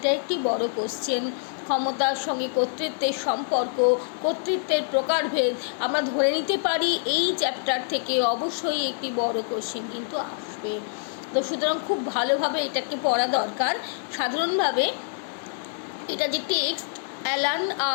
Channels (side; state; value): right; silent; digital silence